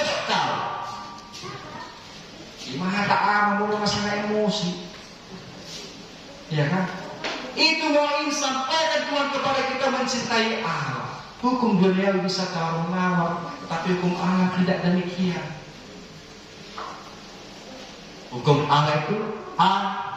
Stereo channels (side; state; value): both; identical; correlation 1.00